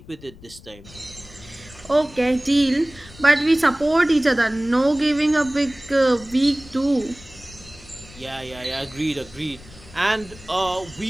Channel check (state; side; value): noise; left; rumble, 21 dB below the sound